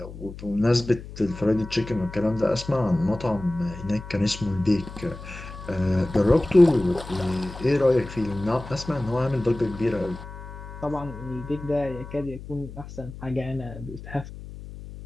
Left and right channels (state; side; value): noise; left; hum, 13 dB below the sound